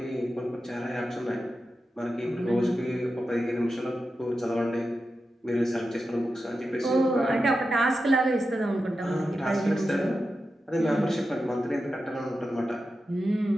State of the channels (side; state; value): both; normal; correlation 0.91